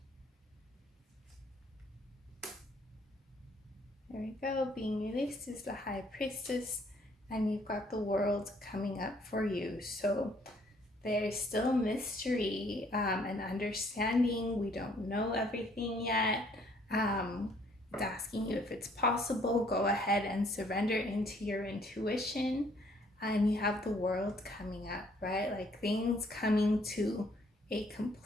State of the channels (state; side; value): normal; both; correlation 0.63